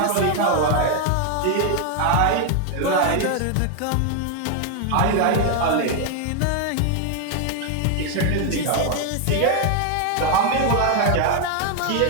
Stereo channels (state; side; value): different; both; correlation 0.01